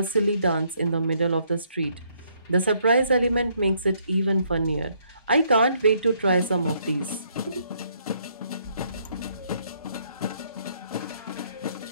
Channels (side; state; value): both; inverted; correlation -0.70